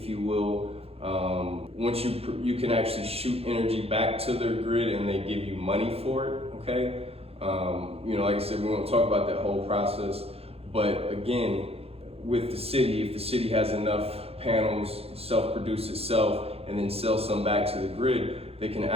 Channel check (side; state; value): left; late; 0.29 ms